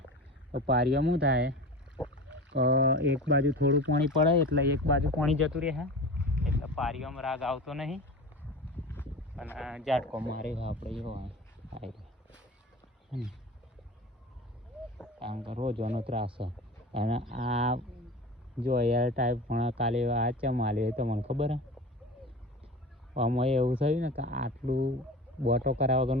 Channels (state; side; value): normal; both; correlation 0.33